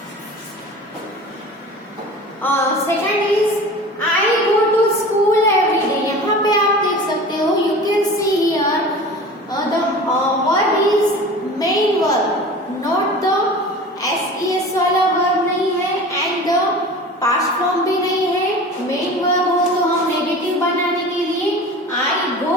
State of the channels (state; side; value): normal; both; correlation 0.37